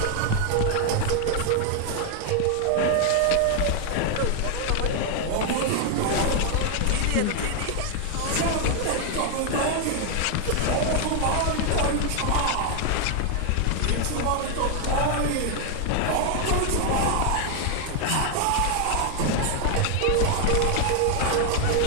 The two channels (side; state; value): both; different; correlation 0.00